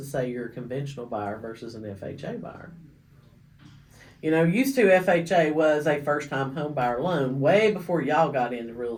say you're a conventional buyer versus an FHA buyer? Used to FHA was a first-time home buyer loan way before y'all got into real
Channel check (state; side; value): identical; both; correlation 1.00